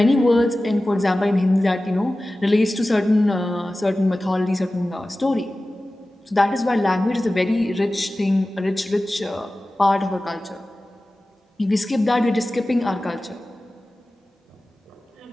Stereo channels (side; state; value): both; normal; correlation 0.96